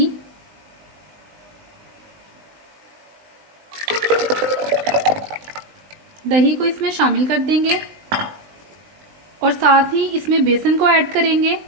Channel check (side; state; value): left; late; 19 ms